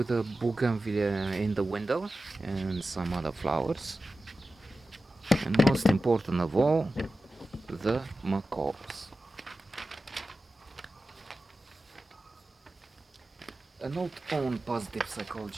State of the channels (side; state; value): both; normal; correlation 0.94